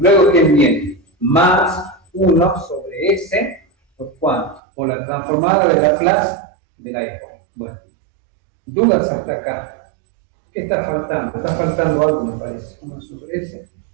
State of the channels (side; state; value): left; drops out; at 4.6 s